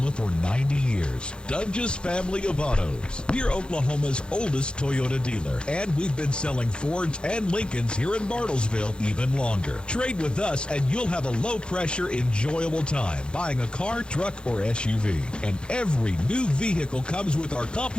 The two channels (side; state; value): right; late; 0.052 ms